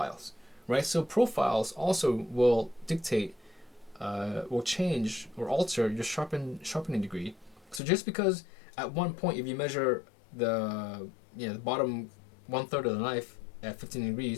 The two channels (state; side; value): drops out; right; at 7.8 s